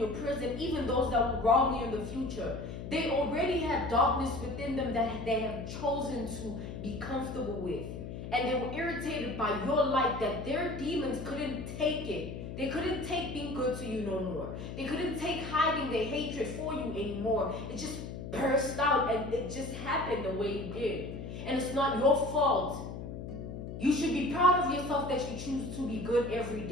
prison, even those that will wrong you in the future, they already have darkness within them that they have chosen to be comfortable with. And they were irritated by your light, that their demons couldn't take it. They couldn't take being good to you no more. They couldn't take hiding their hatred for you anymore. It just burst out, and it just happened the way it did. And it's not your fault. You should be proud of yourself that you choose to be good every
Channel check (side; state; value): left; noise; hum, 8 dB below the sound